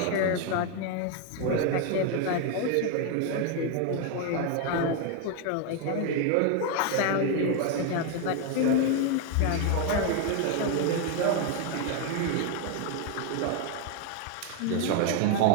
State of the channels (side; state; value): both; different; correlation 0.01